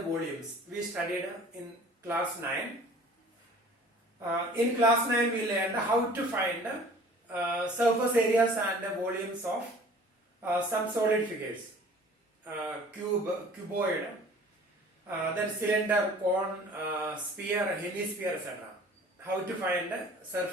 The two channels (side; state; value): both; normal; correlation 0.49